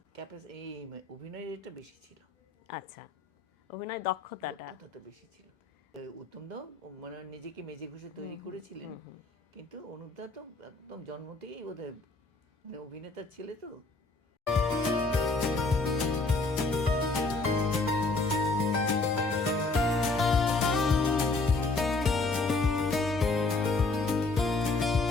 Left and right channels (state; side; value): quieter; right; 3.5 dB